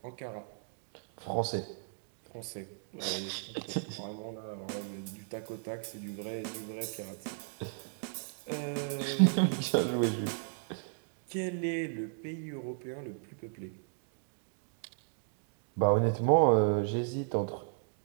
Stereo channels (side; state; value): left; silent; digital silence